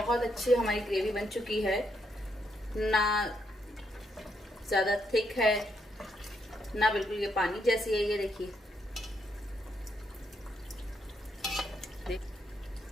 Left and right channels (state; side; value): normal; both; correlation 0.77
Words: अच्छी हमारी ग्रेवी बन चुकी है। ना ज़्यादा थिक है ना बिल्कुल ये पानी जैसी है। ये देखिए